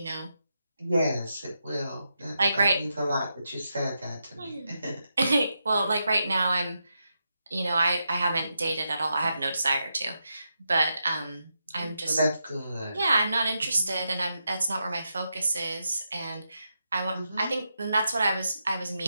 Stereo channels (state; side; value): inverted; both; correlation -0.85